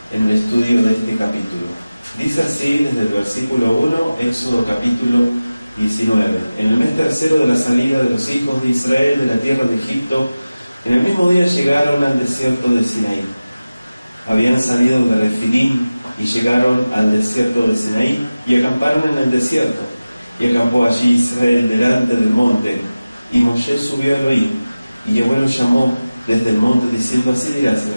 en el estudio de este capítulo. Dice así desde el versículo 1, Éxodo capítulo 19. En el mes tercero de la salida de los hijos de Israel de la tierra de Egipto, en el mismo día llegaron al desierto de Sinaí. Habían salido de Refidim y llegaron al desierto de Sinaí y acamparon en el desierto. Y acampó allí Israel delante del monte. Y Moshe subió a Elohim, y Yahweh lo llamó desde el monte, diciendo: así dirás a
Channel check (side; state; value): both; inverted; correlation -0.97